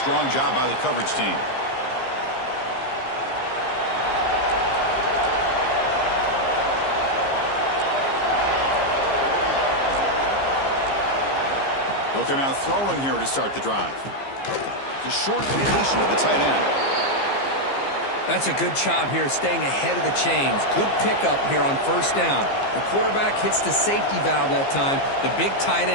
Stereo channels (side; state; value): right; late; 15 ms